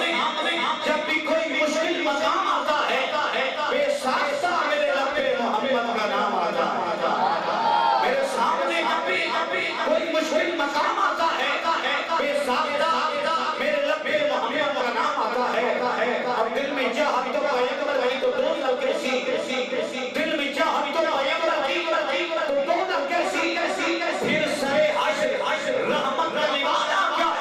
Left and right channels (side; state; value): both; identical; correlation 1.00